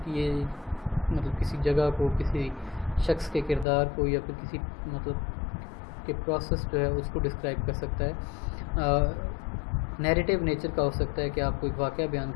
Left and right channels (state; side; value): drops out; right; at 3.7 s